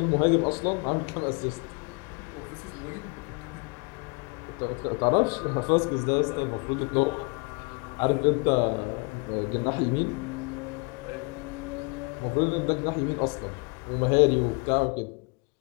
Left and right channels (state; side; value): quieter; right; 32.4 dB